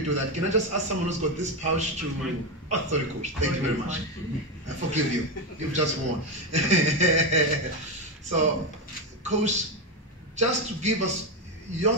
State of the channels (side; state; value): both; normal; correlation 0.11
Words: do that, can I just ask someone who's got this pouch to... Oh, sorry, Coach. Thank you very much. I forgive you. You've just won. So, Coach, just to give us your